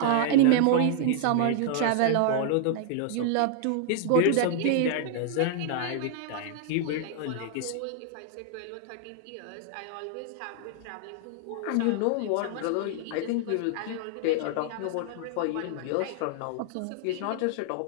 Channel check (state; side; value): different; both; correlation 0.00